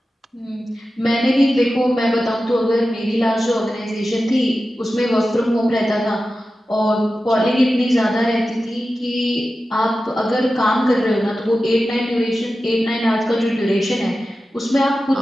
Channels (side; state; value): both; normal; correlation 0.93